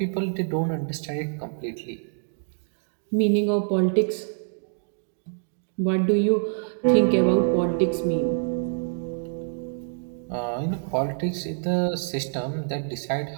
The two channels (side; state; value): left; silent; digital silence